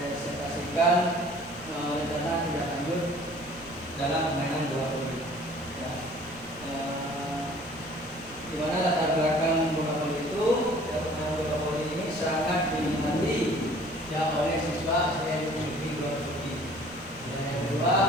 rencana tindak lanjut dalam permainan bola voli. Ya. Di mana latar belakang bola voli itu, ya, permainan bola voli ini sangat diminati ya oleh siswa yang memiliki bola voli. Dan yang kedua,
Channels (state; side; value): noise; right; rumble, 23 dB below the sound